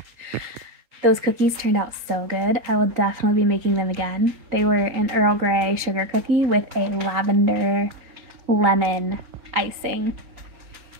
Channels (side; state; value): left; late; 3.9 ms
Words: Those cookies turned out so good. I will definitely be making them again. They were an Earl Grey sugar cookie with a lavender lemon icing.